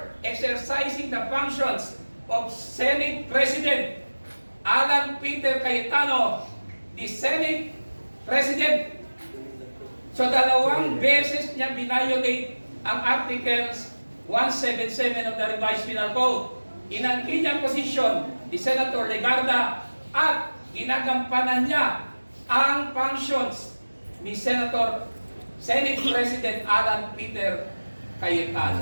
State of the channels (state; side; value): inverted; both; correlation -1.00